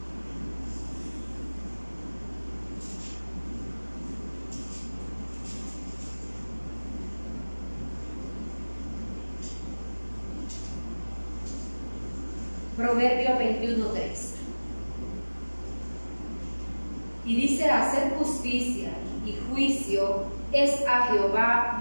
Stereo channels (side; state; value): both; inverted; correlation -1.00